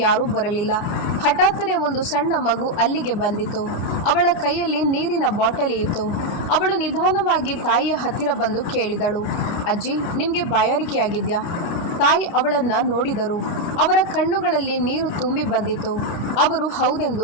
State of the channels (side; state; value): right; late; 29 ms